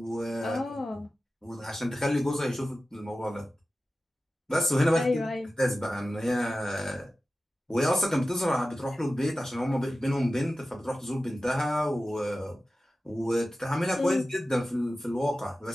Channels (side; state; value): both; normal; correlation 0.94